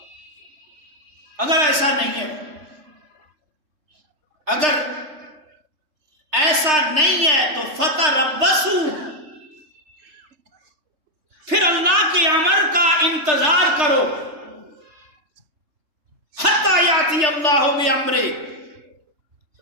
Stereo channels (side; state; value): left; late; 3.3 ms